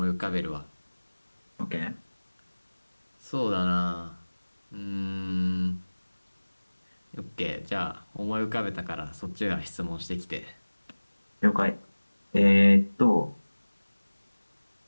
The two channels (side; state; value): both; inverted; correlation -1.00